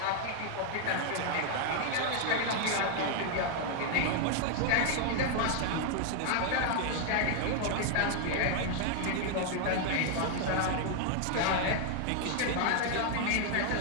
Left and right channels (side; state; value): both; different; correlation 0.00